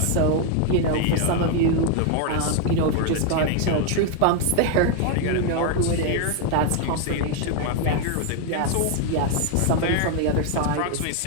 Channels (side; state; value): both; different; correlation 0.01